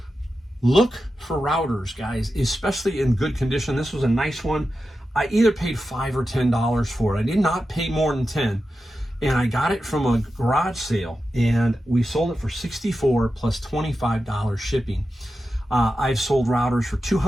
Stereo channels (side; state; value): both; normal; correlation 0.91